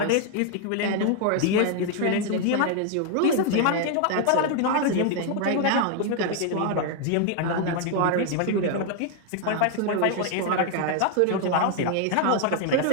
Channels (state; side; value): different; both; correlation 0.00